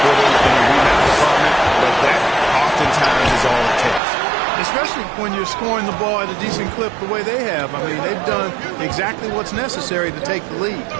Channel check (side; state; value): left; drops out; at 4.0 s